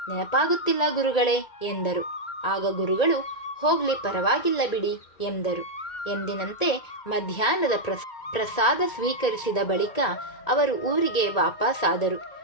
ನೆನಪಾಗುತ್ತಿಲ್ಲ ಗುರುಗಳೇ ಎಂದರು. ಆಗ ಗುರುಗಳು, ಹೋಗ್ಲಿ, ಪರವಾಗಿಲ್ಲ ಬಿಡಿ ಎಂದರು. ಎಂದಿನಂತೆ ಮಧ್ಯಾಹ್ನದ ಪ್ರಸಾದ ಸ್ವೀಕರಿಸಿದ ಬಳಿಕ ಅವರು ಊರಿಗೆ ವಾಪಸ್ಸಾದರು.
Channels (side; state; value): right; late; 1.8 ms